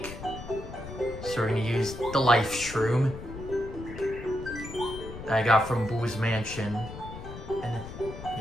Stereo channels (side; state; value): left; noise; rumble, 11 dB below the sound